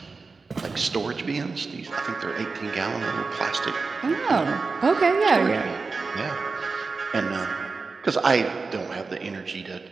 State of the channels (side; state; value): left; quieter; 4.3 dB